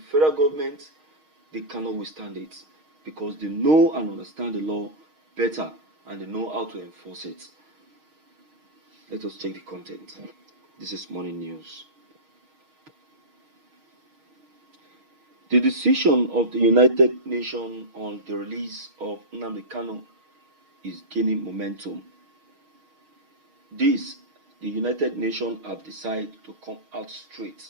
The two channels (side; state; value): left; late; 6.4 ms